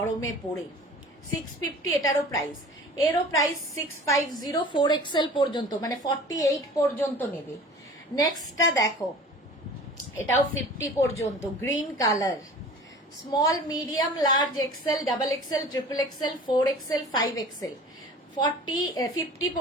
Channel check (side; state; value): both; normal; correlation 0.42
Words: পরে। 650 এটারও প্রাইস, এরও প্রাইস 650, 4XL পর্যন্ত, মানে 48 পর্যন্ত নেবে। নেক্সটটা দেখো, এটাও 50 পর্যন্ত, green colour. Small, medium, large, XL, double XL, triple XL, 4XL, 5XL, 50